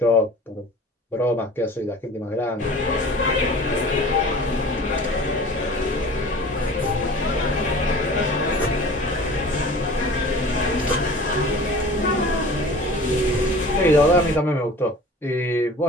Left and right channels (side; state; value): both; normal; correlation 0.42